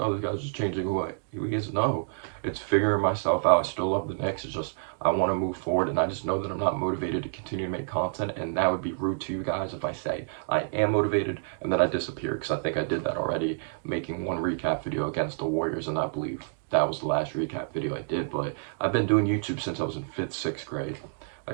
this guy's just changing who he is." No, it's figuring myself out. I still love the Knicks. It's just I want to move forward, and I just know that I'm not motivated to continue to make content, and that would be rude to you guys if I say I am motivated and then I disappear, because I think I did that already, making one recap video against the Warriors, and I believe that was the last recap video I did. But I've been doing YouTube since I was in 5th, 6th grade.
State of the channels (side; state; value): left; silent; digital silence